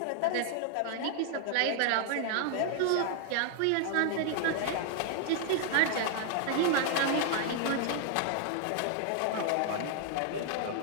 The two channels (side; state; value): both; different; correlation 0.00